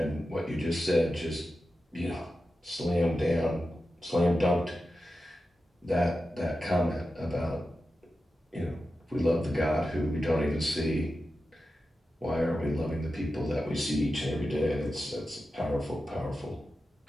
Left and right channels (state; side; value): normal; both; correlation 0.92